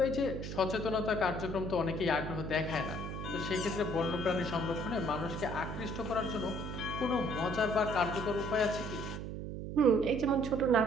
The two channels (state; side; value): noise; right; hum, 6 dB below the sound